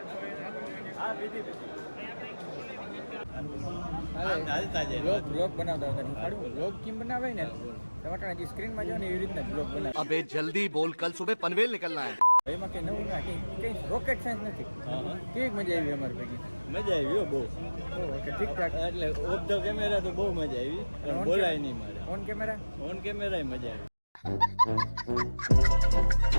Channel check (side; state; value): both; inverted; correlation -1.00